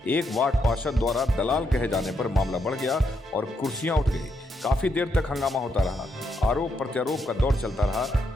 एक वार्ड पार्षद द्वारा दलाल कहे जाने पर मामला बढ़ गया और कुर्सियां उठ गई। काफी देर तक हंगामा होता रहा, आरोप प्रत्यारोप का दौर चलता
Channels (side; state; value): both; normal; correlation 0.79